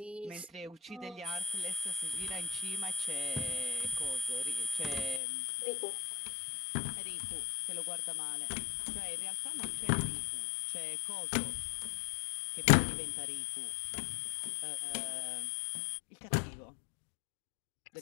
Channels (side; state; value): right; drops out; at 5.2 s